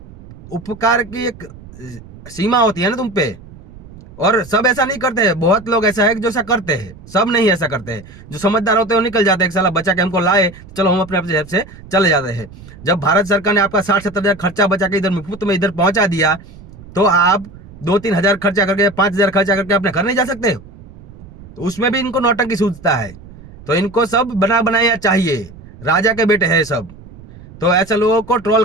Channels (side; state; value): right; noise; rumble, 19 dB below the sound